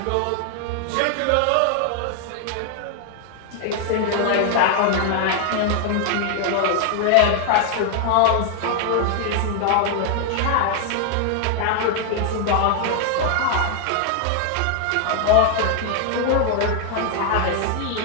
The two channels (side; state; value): both; different; correlation 0.00